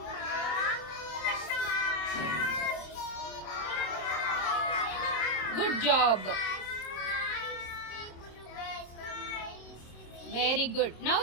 Good job. Very good. Now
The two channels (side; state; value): right; late; 26 ms